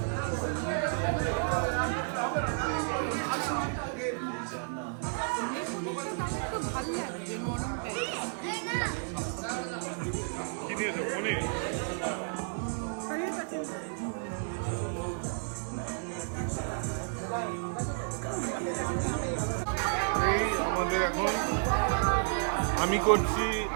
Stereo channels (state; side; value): silent; left; 57 dB below the other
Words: ভালো লাগছে, নরম টাইপ। কি নিয়েছো? পনির? এই আমাদের এখন আমি করছি